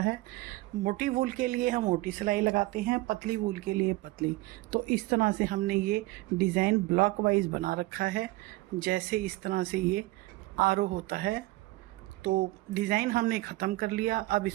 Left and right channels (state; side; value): quieter; left; 19.7 dB